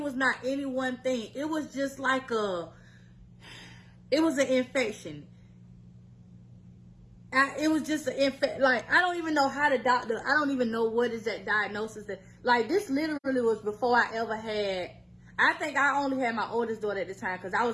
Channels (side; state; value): both; identical; correlation 1.00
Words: was not any one thing. It was just like it was an infection. It was just an infection. Like, I don't even know how the doctor, I don't even know what is that diagnosis. That, like, this literally was before I ever had, I think I only had my oldest daughter at the time because I